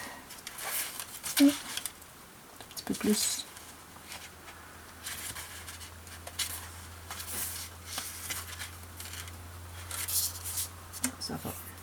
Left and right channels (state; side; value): identical; both; correlation 1.00